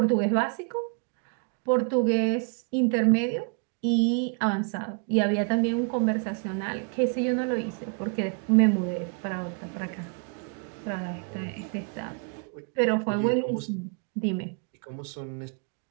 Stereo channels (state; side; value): quieter; left; 38.4 dB